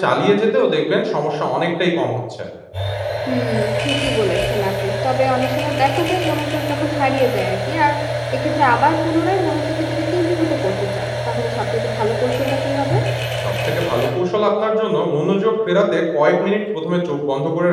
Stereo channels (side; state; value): both; identical; correlation 1.00